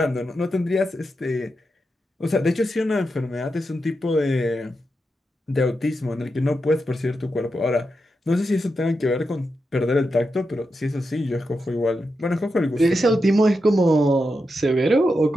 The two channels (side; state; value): both; normal; correlation 0.87